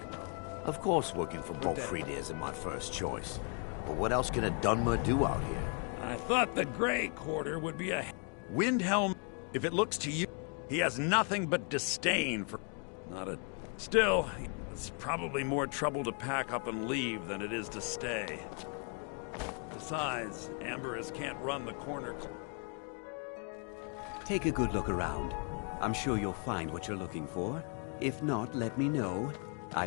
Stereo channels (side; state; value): right; quieter; 38.7 dB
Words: Of course working for Bolfrid isn't my first choice. But what else can a Dunmer do out here? I thought the Grey Quarter would be a... Windhelm, if it looks to you, he has nothing but disdain for... Not a... Still, it's probably more trouble to pack up and leave than it is to stay. Besides, Amberus can't run the corner... Take a good look around. I'm sure you'll find what you're looking for. If not, let me know. I